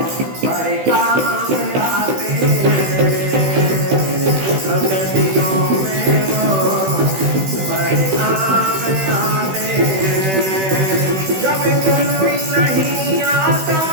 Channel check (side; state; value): left; late; 16 ms